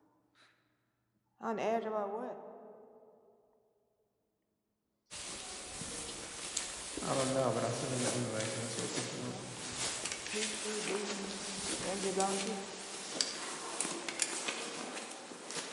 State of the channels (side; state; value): both; identical; correlation 1.00